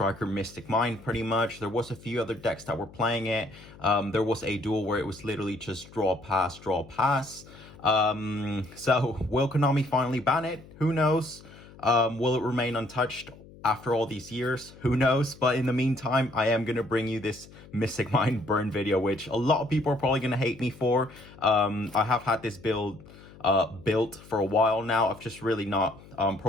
Mystic Mine pretty much. There was a few other decks that were playing it. There was a duel where it was literally just draw, pass, draw, pass. So will Konami finally ban it? Who knows? Will it remain untouched after all these years? Who knows? But in the meantime, I am going to bring you this Mystic Mine burn video, which a lot of people are probably going to hate me for. I have had this build built for a while now. I've just really not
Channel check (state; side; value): noise; left; hum, 21 dB below the sound